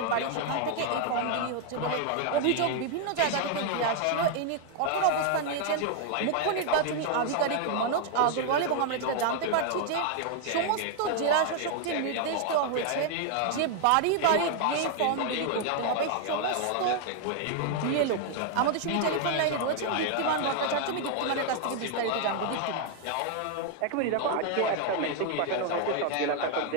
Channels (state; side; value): different; both; correlation 0.00